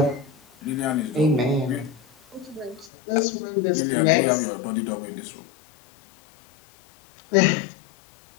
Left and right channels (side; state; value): right; drops out; at 2.9 s